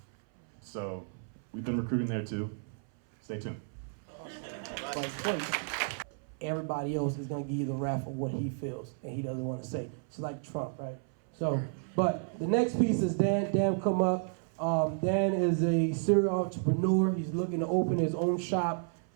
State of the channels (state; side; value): silent; left; 56 dB below the other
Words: So we've been recruiting there too. Stay tuned. Everybody else is gonna give you the rap of what he feels and he doesn't want to say. It's like Trump, right? So, but the next piece is Dan. Dan, come up. Dan is a serial entrepreneur. He's looking to open his own shop.